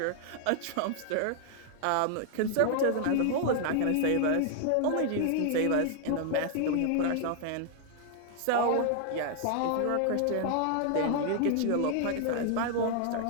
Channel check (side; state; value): both; different; correlation 0.00